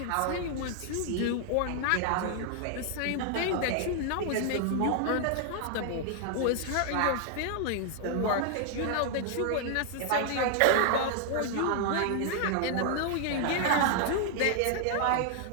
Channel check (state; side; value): different; both; correlation 0.00